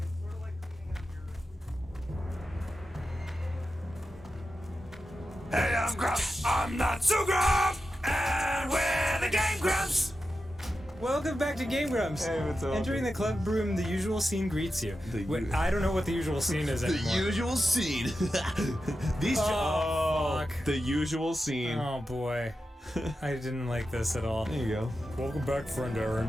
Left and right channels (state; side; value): normal; both; correlation 0.91